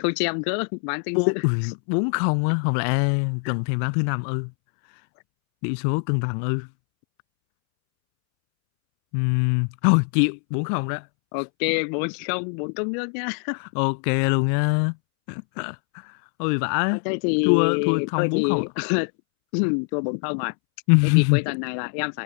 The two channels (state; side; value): silent; right; 63 dB below the other